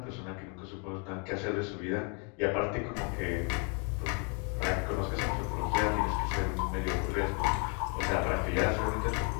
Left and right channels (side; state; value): right; quieter; 37.0 dB